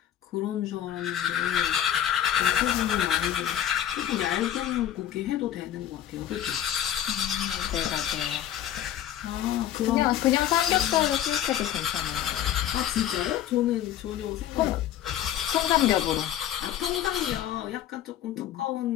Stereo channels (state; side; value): quieter; right; 11.3 dB